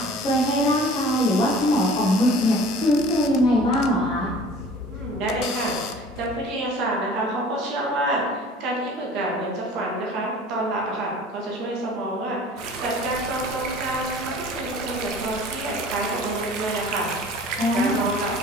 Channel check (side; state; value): both; normal; correlation 0.46